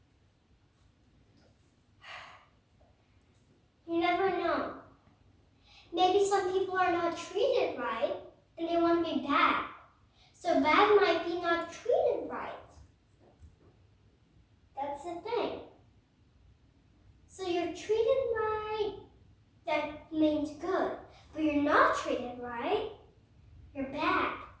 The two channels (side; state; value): both; identical; correlation 1.00